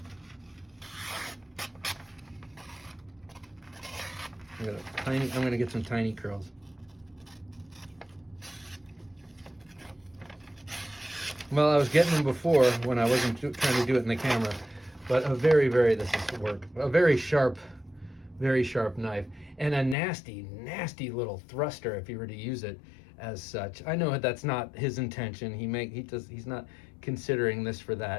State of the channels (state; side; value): drops out; right; at 20.0 s